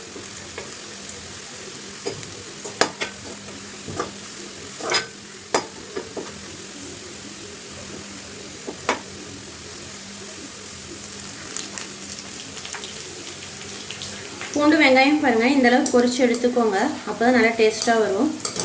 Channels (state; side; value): identical; both; correlation 1.00